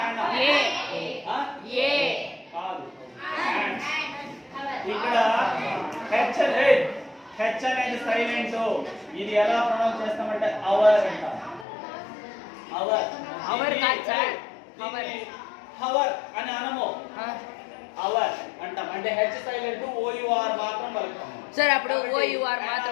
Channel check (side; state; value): right; drops out; at 11.7 s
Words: ఏ ఆ? ఏ కాదు. And. ఇక్కడ హెచ్ అనేది సైలెంట్. ఇది ఎలా ప్రొనౌన్స్ చేస్తామంటే అవర్ అంటాం. అవర్ అవర్ కాదు సార్. అవర్ హవర్ అని అనము, ఆ. అవర్ అంటాం. అంటే హెచ్ సైలెంట్, ఓయుఆర్ మాత్రం పలుకుతాము. సార్ అప్పుడు ఓయుఆర్